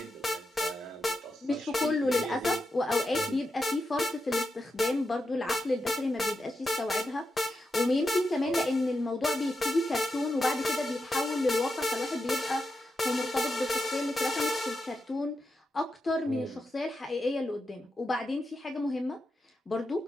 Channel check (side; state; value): both; normal; correlation 0.88